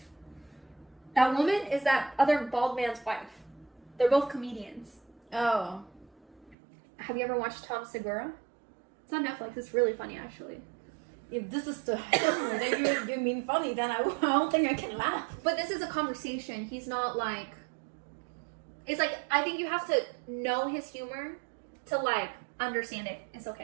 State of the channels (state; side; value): drops out; left; at 6.6 s